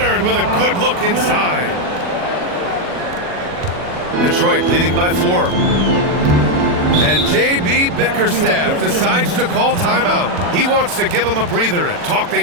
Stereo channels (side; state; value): left; late; 40 ms